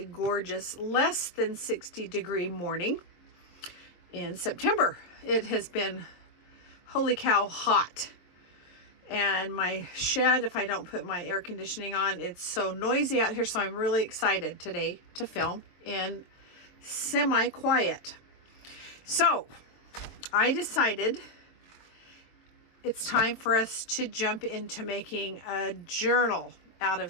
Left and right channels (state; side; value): late; right; 23 ms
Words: gorgeous, less than 60-degree morning in September. It has been, holy cow, hot. And my shed, if I don't put my air conditioning on, it's so noisy out here. So I'm really excited today to film in semi-quiet. So I decided it's time for us to jump into making a journal out